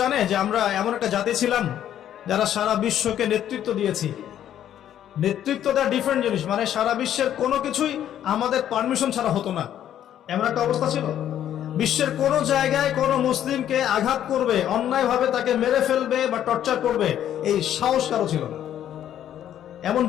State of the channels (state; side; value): quieter; right; 10.8 dB